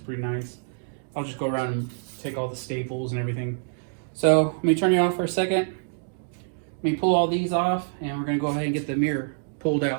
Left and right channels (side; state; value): left; silent; digital silence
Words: nice. I'll just go around and take all the staples and everything. So let me turn you off for a second, Let me pull all these off, and we're going to go ahead and get the mirror pulled